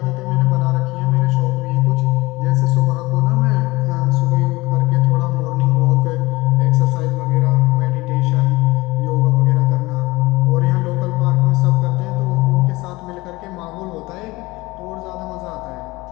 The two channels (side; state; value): right; quieter; 21.4 dB